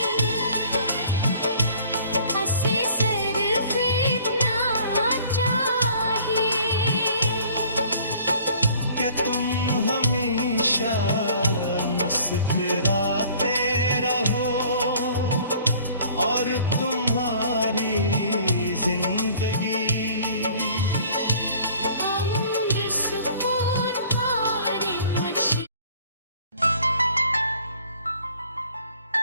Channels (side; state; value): both; inverted; correlation -0.53